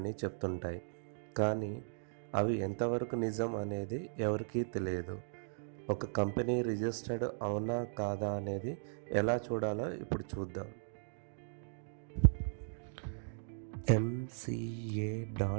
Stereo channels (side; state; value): left; silent; digital silence